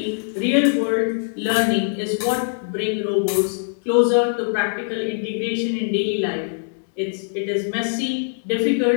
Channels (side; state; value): right; silent; digital silence